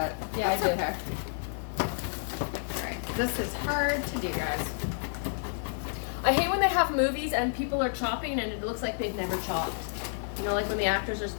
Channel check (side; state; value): right; silent; 58 dB below the other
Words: Yeah, That's I do. okay. Alright, this is hard to do, guys. I hate when they have movies and people are chopping and it looks like they've never chopped. You know, like when the actors are